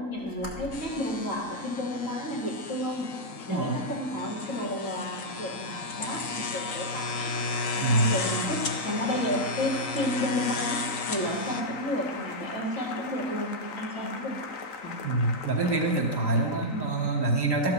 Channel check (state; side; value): late; right; 3.9 ms